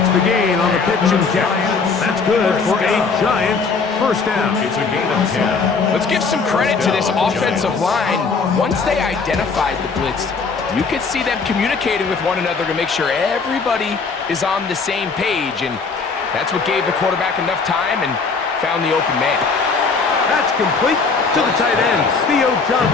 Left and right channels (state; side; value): quieter; right; 4.8 dB